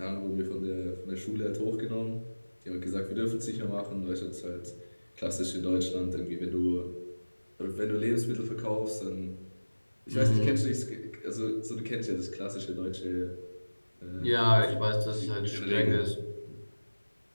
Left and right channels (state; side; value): inverted; both; correlation -1.00